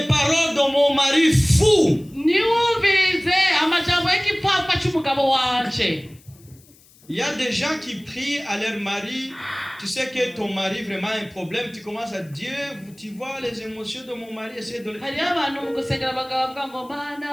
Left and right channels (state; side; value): noise; left; hiss, 27 dB below the sound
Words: paroles de mon mari fou. Il y a des gens qui prient à leur mari. Tu sais que ton mari vraiment a un problème. Tu commences à dire, tu vois les émotions de mon mari. Essaye de...